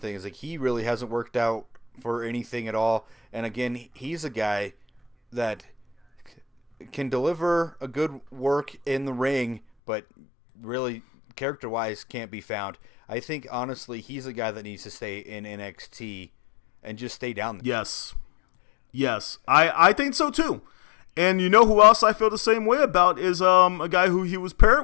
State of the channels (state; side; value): drops out; right; at 9.6 s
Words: Is like he really hasn't worked out for anything at all. And again, he's a guy that can deliver a good work in the ring, but really character-wise can't be found. I think, honestly, he's a guy that needs to stay in NXT and just stay down there. Yes. I think so, too. And you know who else I feel the same way about is a guy who he was